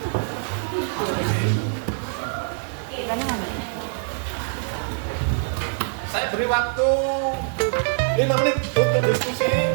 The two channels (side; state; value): left; silent; digital silence